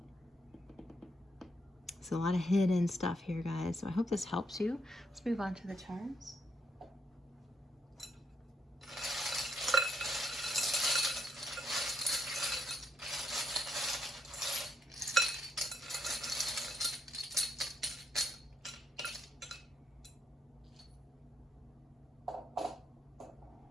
So a lot of hidden stuff here, guys. So I hope this helps you. Let's move on to the charms.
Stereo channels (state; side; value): normal; both; correlation 0.76